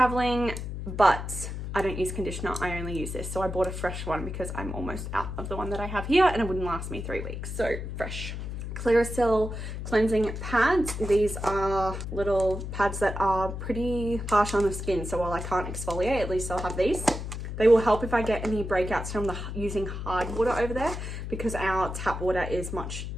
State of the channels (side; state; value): left; noise; hum, 6 dB below the sound